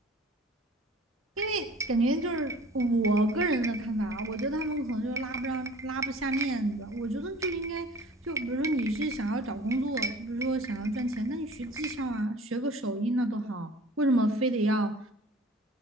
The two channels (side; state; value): both; normal; correlation 0.47